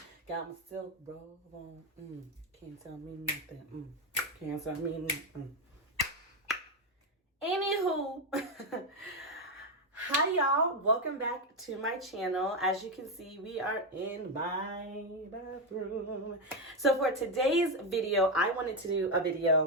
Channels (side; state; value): both; normal; correlation 0.08